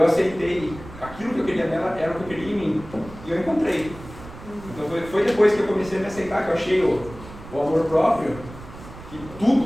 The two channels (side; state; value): right; noise; rumble, 16 dB below the sound